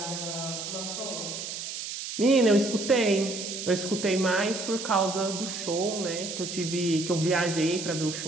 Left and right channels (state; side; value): noise; right; hiss, 6 dB below the sound